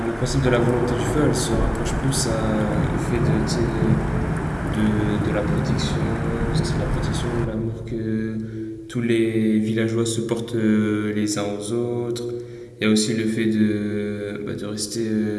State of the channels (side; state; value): both; identical; correlation 1.00